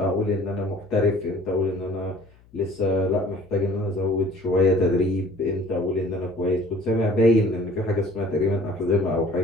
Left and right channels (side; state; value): left; noise; hum, 28 dB below the sound